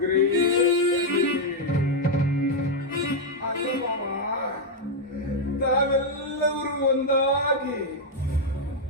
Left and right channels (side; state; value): both; normal; correlation -0.01